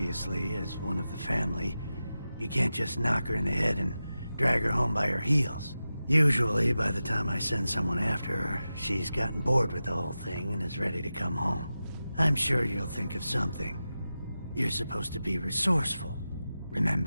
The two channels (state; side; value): inverted; both; correlation -0.93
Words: as one of the family, you can't just knock her in the head and drag her home by her heels. Usually, by the time I send someone after her, she's gotten bored with the whole thing and is ready to come home. I'm sure you'll think of something. You're supposed to be resourceful,